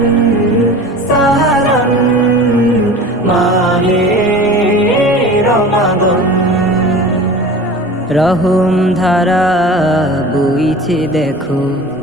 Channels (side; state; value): both; normal; correlation 0.38